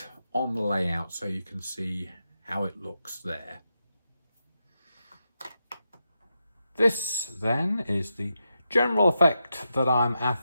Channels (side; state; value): both; inverted; correlation -0.87